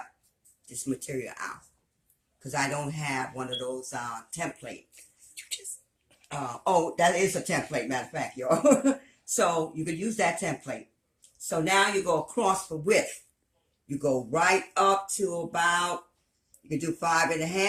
this material out, because I don't have one of those template. Oh, that is a template, matter of fact, y'all. So you could use that template. So now you go across the width. You go right up to about, you can do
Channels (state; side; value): identical; both; correlation 1.00